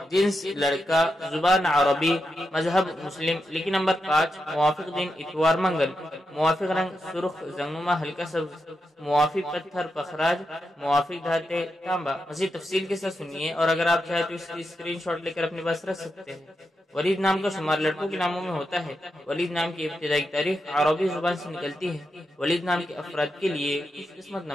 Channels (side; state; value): both; normal; correlation 0.86